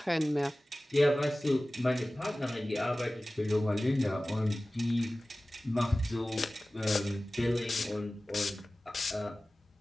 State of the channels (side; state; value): both; normal; correlation 0.97